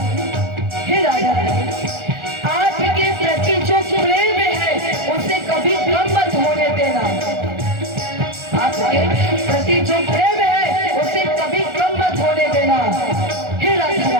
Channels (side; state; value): left; late; 1.4 ms